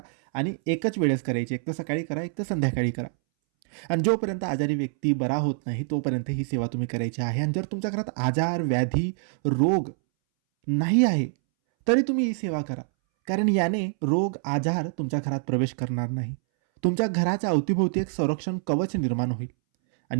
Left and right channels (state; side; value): silent; left; 61 dB below the other